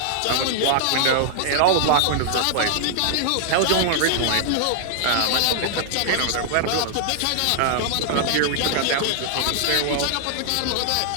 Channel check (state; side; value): different; both; correlation -0.01